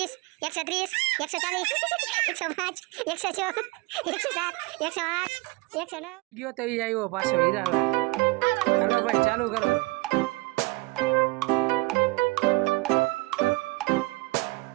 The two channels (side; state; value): left; quieter; 24.2 dB